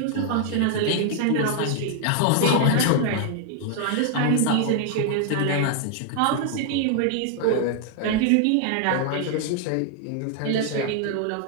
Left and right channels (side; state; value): both; different; correlation 0.00